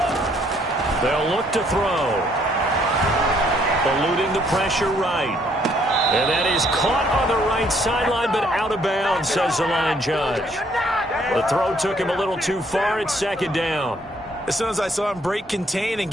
They'll look to throw. Eluding the pressure right. And that is caught on the right sideline, but out of bounds, says the line judge. The throw took him a little too far. It's 2nd down. As soon as I saw him break contain and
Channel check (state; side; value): normal; both; correlation 0.67